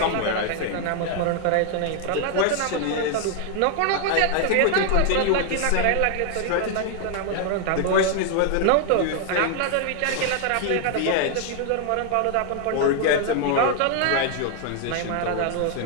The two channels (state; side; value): different; both; correlation 0.00